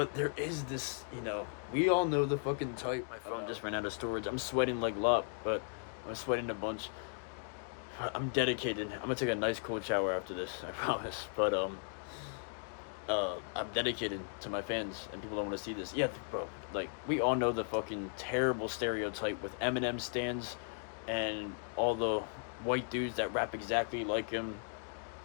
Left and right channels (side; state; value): right; silent; 53 dB below the other